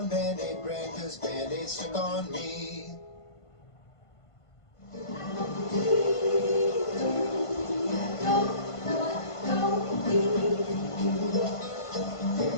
Band-Aid brand 'cause Band-Aid stuck on me.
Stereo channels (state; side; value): late; right; 1.5 ms